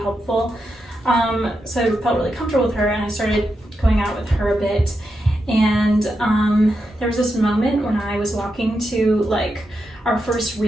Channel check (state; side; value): normal; both; correlation 0.86